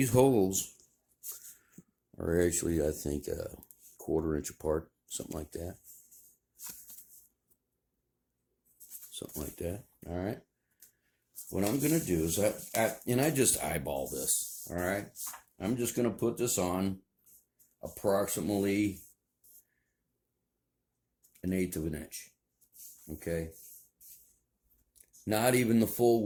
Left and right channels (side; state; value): both; identical; correlation 1.00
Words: holes are actually, I think, a 1/4 inch apart, something like that. Something like that. All right. What I'm going to do is I just eyeball this. All right. I'm just going to put this on approximately 1/8 of an inch. Okay. Not even the full